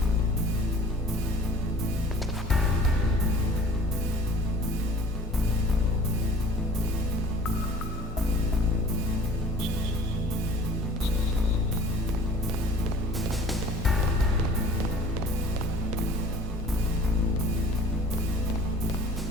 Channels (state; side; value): normal; both; correlation 0.46